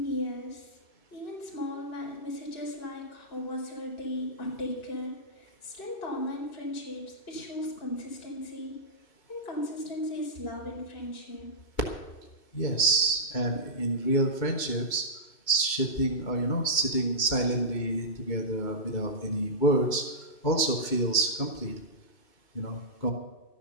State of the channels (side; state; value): right; late; 2.3 ms